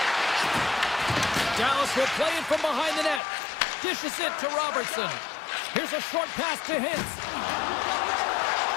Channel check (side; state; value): right; drops out; at 3.2 s